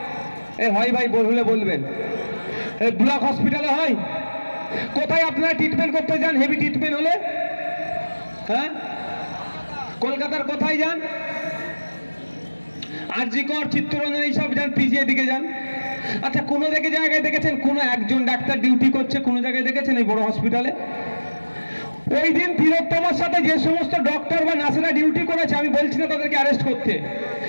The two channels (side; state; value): both; inverted; correlation -1.00